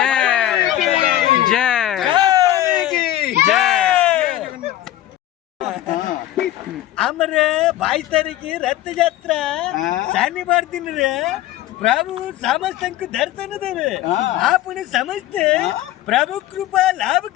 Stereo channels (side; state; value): right; quieter; 13.7 dB